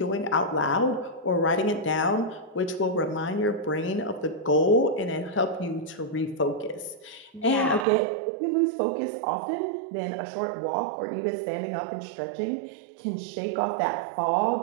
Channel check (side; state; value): left; drops out; at 7.9 s